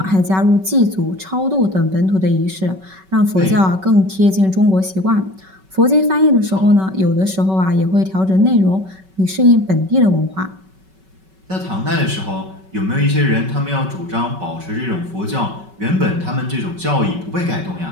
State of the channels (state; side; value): late; left; 5.3 ms